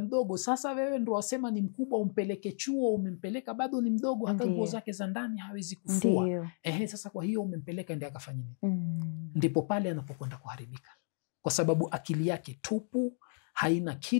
sasa wewe ndo wasema ni mkubwa, umpeleke chuo, umempeleka bado ni mdogo, hata nguo zake za ndani hawezi kufua. Sasa kwa hiyo umempeleka ndiye akafanya nini? Ndipo pale anapokwenda kuharibika, kwa sababu akili yake tupu, haina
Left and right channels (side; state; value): right; silent; 56 dB below the other